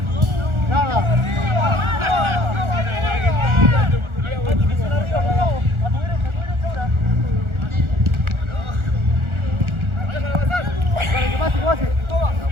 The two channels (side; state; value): left; late; 1.4 ms